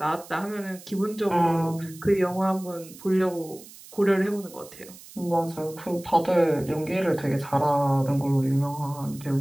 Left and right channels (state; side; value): noise; right; hiss, 19 dB below the sound